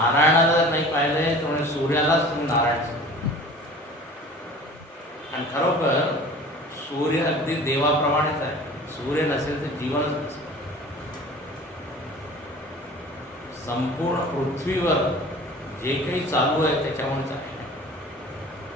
जर नाही पाहिजे तर म्हणजे सूर्यालाच तुम्ही नारायण सांगता. आणि खरोखर सूर्य अगदी देवाप्रमाणेच आहे. सूर्य नसेल तर जीवनच नसेल. संपूर्ण पृथ्वीवर जे काही चालू आहे त्याच्यामुळेच आहे.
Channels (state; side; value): normal; both; correlation 0.43